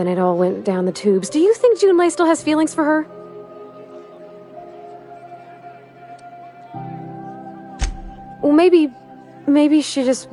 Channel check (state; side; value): identical; both; correlation 1.00